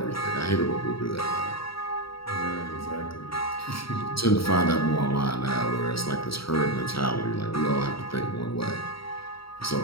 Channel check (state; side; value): late; right; 0.75 ms